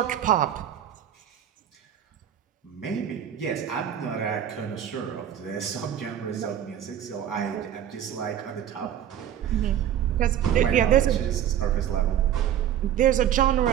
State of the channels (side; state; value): left; quieter; 10.3 dB